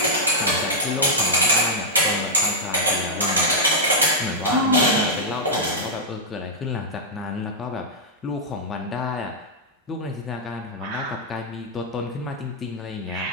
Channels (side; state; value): both; normal; correlation -0.06